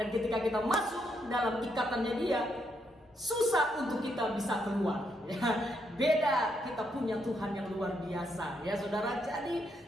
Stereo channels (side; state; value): both; normal; correlation 0.77